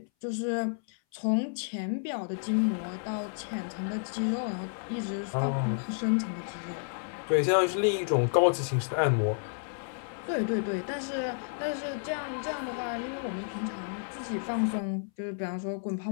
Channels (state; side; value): silent; right; 57 dB below the other